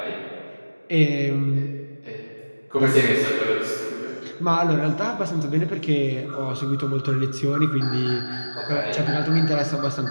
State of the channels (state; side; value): inverted; both; correlation -1.00